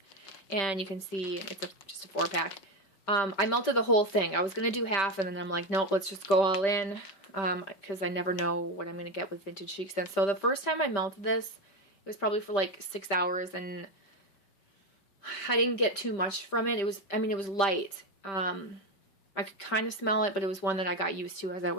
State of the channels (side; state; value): right; late; 5.1 ms